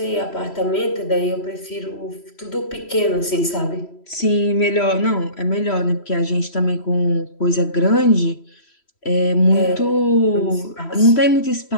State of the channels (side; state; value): right; late; 3.1 ms